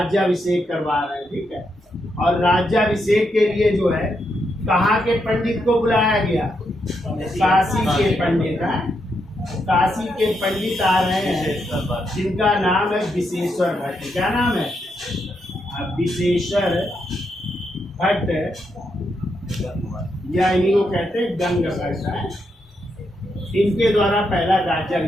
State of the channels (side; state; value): both; normal; correlation 0.81